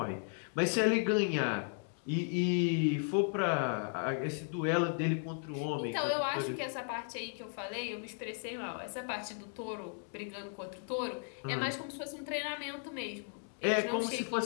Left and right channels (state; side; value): silent; right; 54 dB below the other